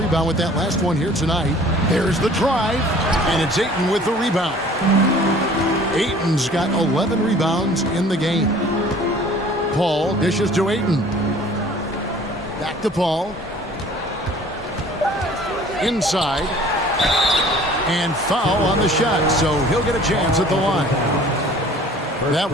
with that last one here tonight. There's the drive, and it's Ayton with the rebound. Ayton's got 11 rebounds in the game. Paul dishes to Ayton. Back to Paul. Inside. And foul on the shot, so he'll get a chance at the line. That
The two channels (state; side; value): normal; both; correlation 0.50